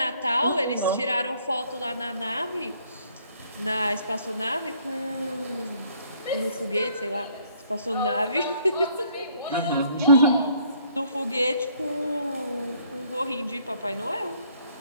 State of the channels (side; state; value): both; inverted; correlation -0.64